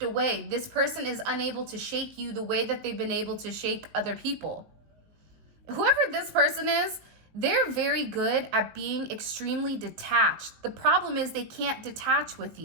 away. This person is unable to shake you the way that they've been able to shake other people. Whoever this person is, they're very good at being extremely detached. The problem is they can't detach with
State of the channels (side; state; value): left; late; 19 ms